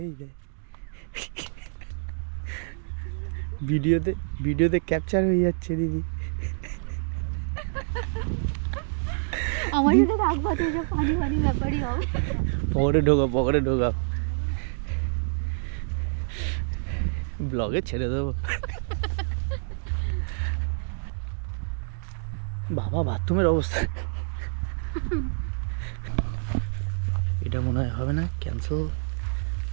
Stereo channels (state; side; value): silent; left; digital silence